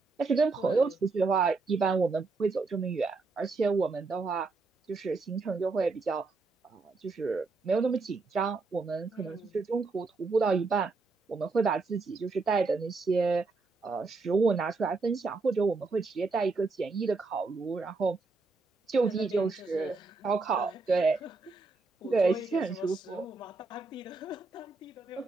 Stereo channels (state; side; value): quieter; left; 3.9 dB